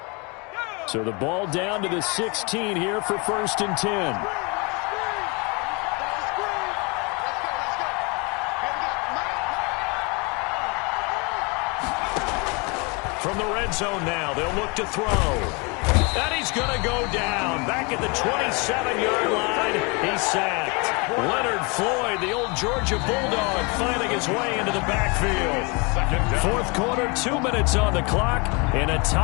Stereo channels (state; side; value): quieter; right; 30.2 dB